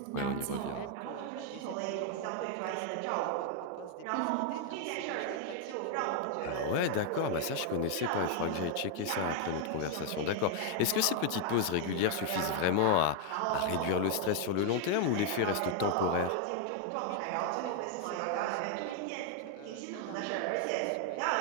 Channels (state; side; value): different; both; correlation 0.00